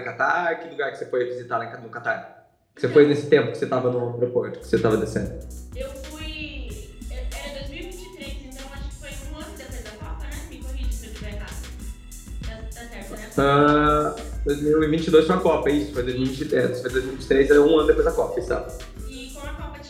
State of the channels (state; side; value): identical; both; correlation 1.00